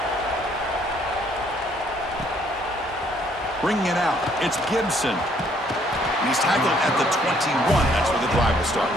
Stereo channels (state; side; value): normal; both; correlation 0.65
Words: Bringing it out, it's Gibson. And he's tackled at the 21. That's where the drive will start.